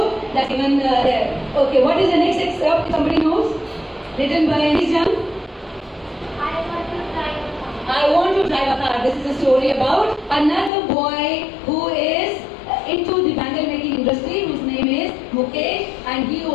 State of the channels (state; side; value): drops out; right; at 10.7 s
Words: That's given there. Okay, what is the next excerpt? Somebody knows? Written by Miss Young. I want to drive a car. This is a story about another boy who is into the bangle making industry, whose name is Mukesh, and he